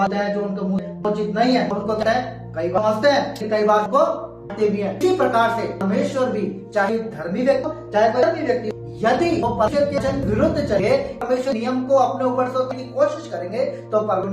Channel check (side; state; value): both; identical; correlation 1.00